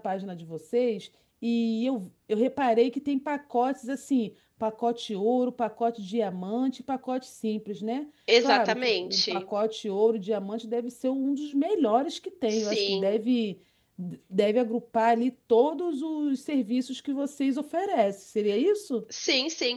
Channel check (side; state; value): both; identical; correlation 1.00